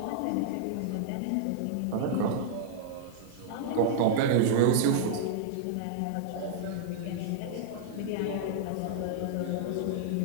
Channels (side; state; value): both; different; correlation -0.01